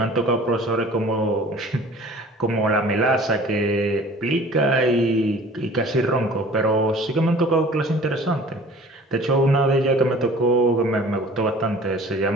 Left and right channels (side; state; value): both; normal; correlation 0.47